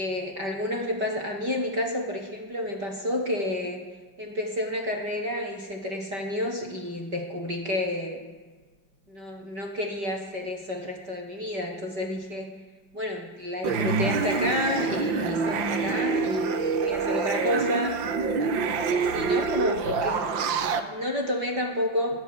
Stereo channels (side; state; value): left; late; 5.7 ms